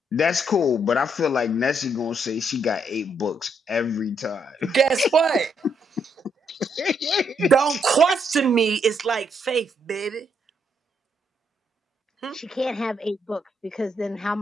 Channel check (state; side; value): normal; both; correlation 0.74